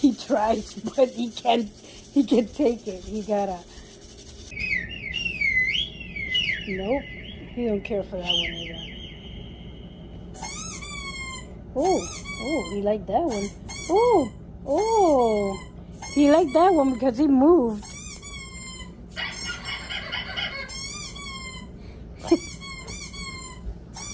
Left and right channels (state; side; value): identical; both; correlation 1.00